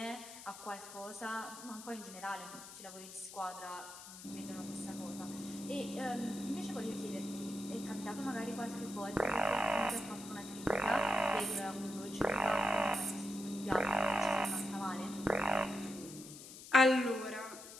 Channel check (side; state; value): left; noise; hiss, 14 dB below the sound